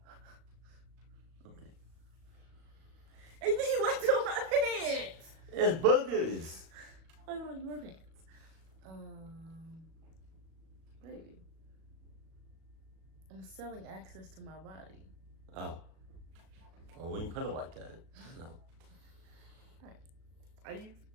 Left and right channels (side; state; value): left; late; 37 ms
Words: Okay. And then you went on my pants! It's boogers. I put on your pants. Baby. I'm selling access to my body. Oh. Well, when you put it like that, no. Alright. Are you